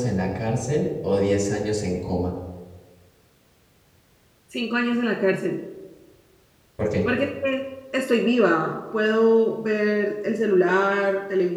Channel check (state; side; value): identical; both; correlation 1.00